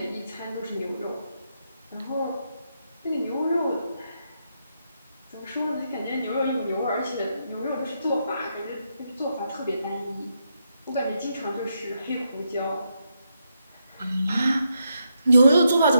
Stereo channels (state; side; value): inverted; both; correlation -0.81